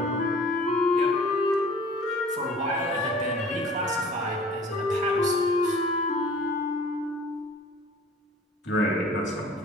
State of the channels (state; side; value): normal; both; correlation 0.48